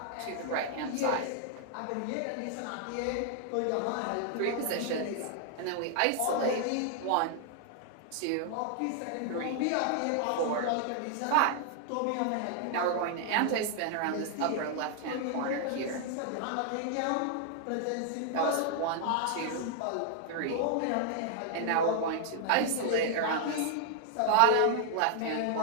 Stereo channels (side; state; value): both; different; correlation 0.00